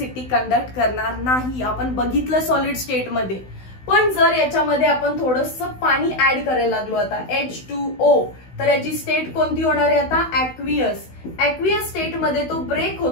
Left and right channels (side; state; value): right; late; 16 ms